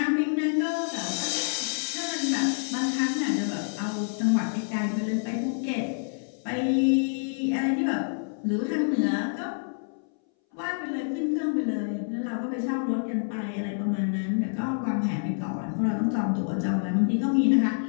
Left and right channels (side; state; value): right; silent; 60 dB below the other